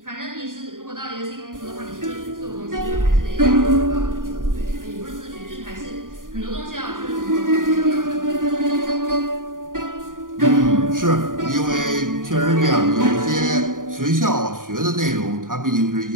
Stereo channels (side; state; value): left; late; 0.89 ms